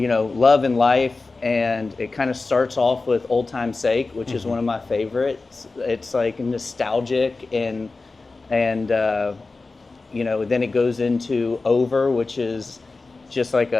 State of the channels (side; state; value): right; quieter; 3.7 dB